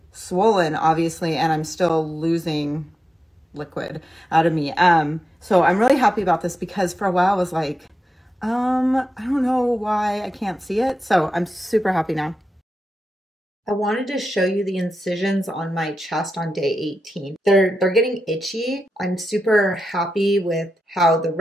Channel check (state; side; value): normal; both; correlation 0.90